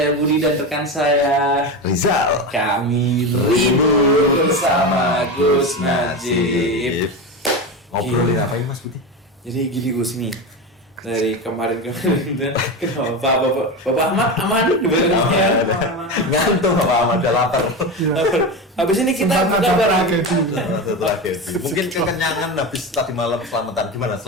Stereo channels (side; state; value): both; normal; correlation 0.21